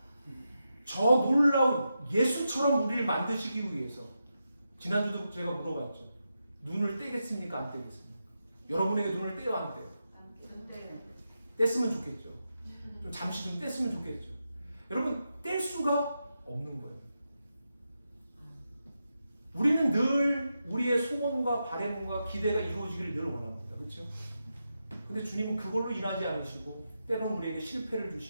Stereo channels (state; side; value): inverted; both; correlation -0.88